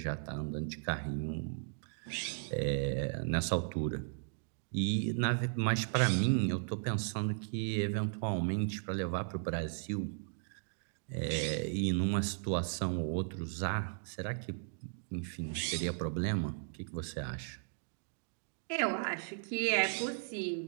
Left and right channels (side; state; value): left; silent; digital silence